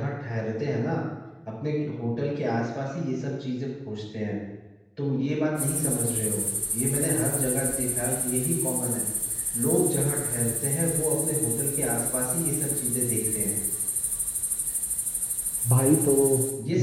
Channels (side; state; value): both; identical; correlation 1.00